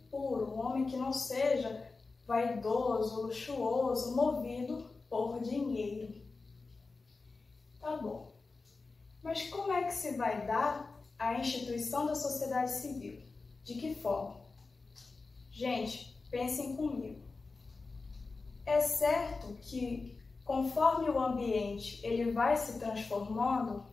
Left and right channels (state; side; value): quieter; right; 4.0 dB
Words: puro, um homem que não seja vaidoso, luxuoso, movido por dinheiro. Tá bom. Mas como é que se vai dar a instituição da sociedade civil? De que forma? Gente, pensem comigo. É certo que conforme o ambiente ele vai se transformando,